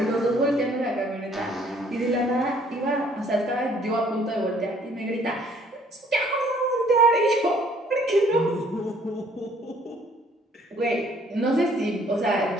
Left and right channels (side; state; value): both; normal; correlation 0.60